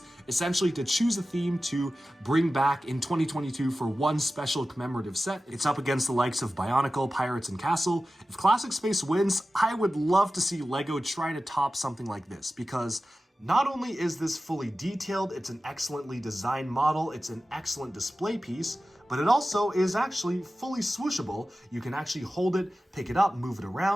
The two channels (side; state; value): both; normal; correlation 0.94